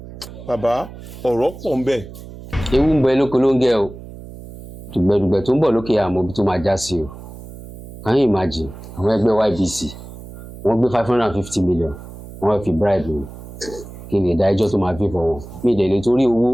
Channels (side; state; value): right; noise; hum, 14 dB below the sound